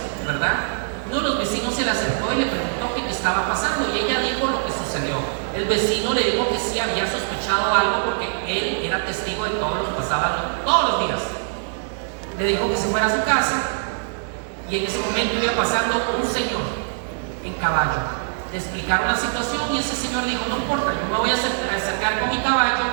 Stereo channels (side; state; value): left; silent; 63 dB below the other